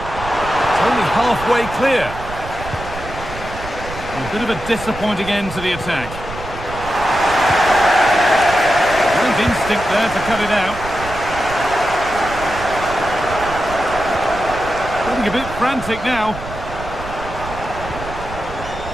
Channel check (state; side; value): noise; right; rumble, 12 dB below the sound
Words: It's only halfway clear. A bit of a disappointing end to the attack. Instinct there to cut it out. Getting a bit frantic now.